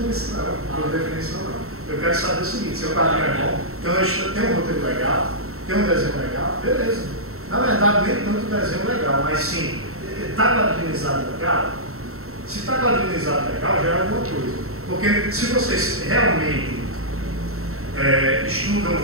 isso não, por definição não. Eu quero saber o seguinte, se o quadrinho é bom, então tem um roteiro legal, tem um desenho legal, beleza. Na verdade, nem tanto desenho legal, mas sim, está quadrinizado legal? Se está quadrinizado legal, já é alguma coisa. Porque se vocês realmente estudam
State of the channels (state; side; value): late; left; 0.63 ms